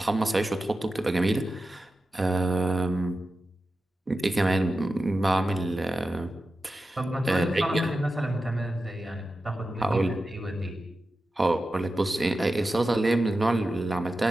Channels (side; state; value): both; normal; correlation 0.92